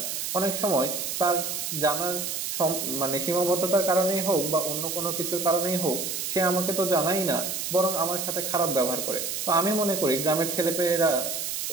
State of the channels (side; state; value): right; noise; hiss, 3 dB below the sound